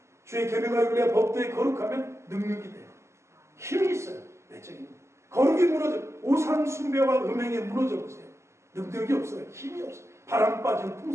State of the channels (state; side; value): late; left; 0.13 ms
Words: 주의 계명과 율례와 법도에 거룩하면 능력이 돼요. 힘이 있어요. 내적인. 거룩이 무너져. 우상 숭배와 음행에 무너져 보세요. 능력이 없어요. 힘이 없어요. 바람 빠진